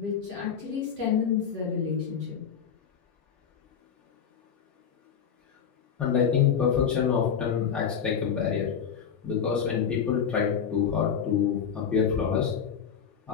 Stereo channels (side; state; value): right; quieter; 7.4 dB